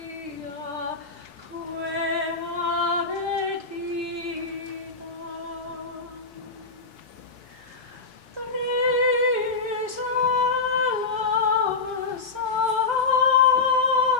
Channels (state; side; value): quieter; right; 4.3 dB